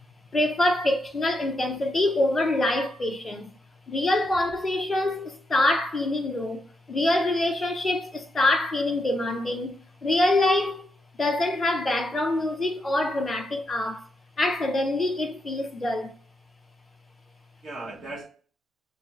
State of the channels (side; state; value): both; normal; correlation 0.82